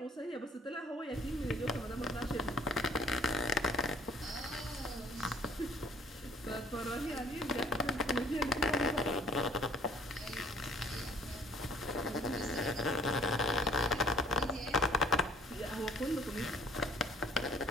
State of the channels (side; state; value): both; normal; correlation 0.57